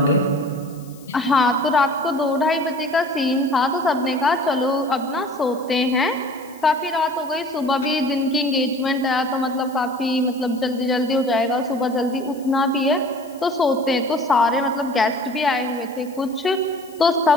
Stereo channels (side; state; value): left; noise; hiss, 24 dB below the sound